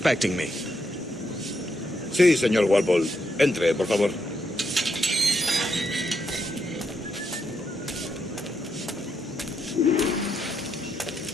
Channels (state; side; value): normal; both; correlation 0.80